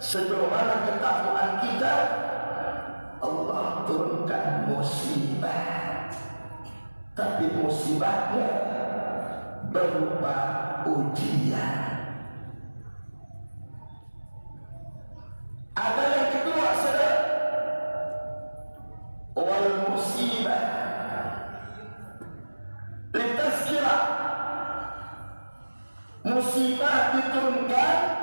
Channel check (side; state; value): both; inverted; correlation -1.00